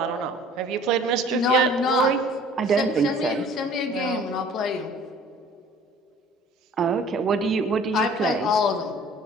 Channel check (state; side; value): normal; both; correlation 0.50